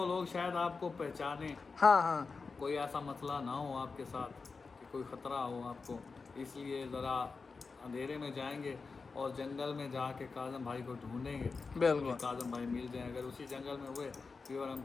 लोग शायद आपको पहचाने, हाँ, कोई ऐसा मसला ना हो आपके साथ कि कोई ख़तरा हो आपको, इसलिए ज़रा अंधेरे में जाएंगे और जंगल में जाके काजम भाई को ढूंढेंगे। बिल्कुल। काजम भाई मिल जाएं, अगर उसी जंगल में हुए फिर हम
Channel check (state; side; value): quieter; right; 4.5 dB